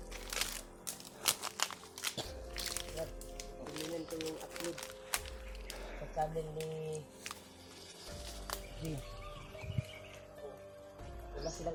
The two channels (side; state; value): both; identical; correlation 1.00